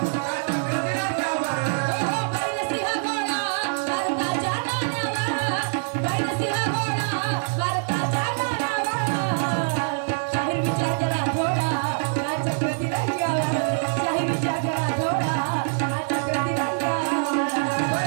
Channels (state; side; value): silent; left; digital silence